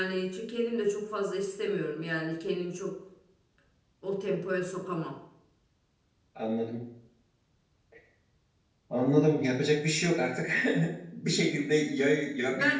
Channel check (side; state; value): both; identical; correlation 1.00